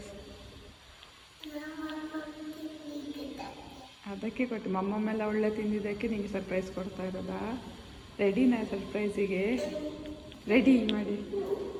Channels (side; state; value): both; identical; correlation 1.00